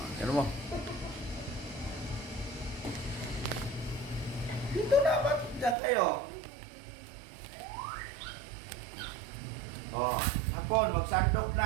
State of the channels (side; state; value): left; drops out; at 5.8 s